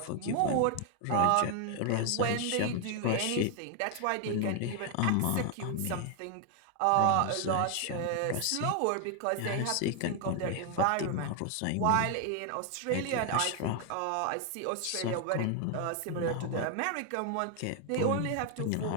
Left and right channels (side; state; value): both; different; correlation 0.00